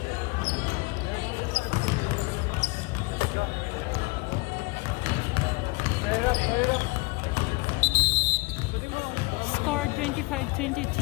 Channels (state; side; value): quieter; right; 25.9 dB